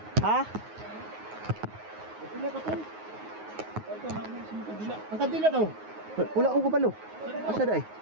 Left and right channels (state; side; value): late; left; 9.4 ms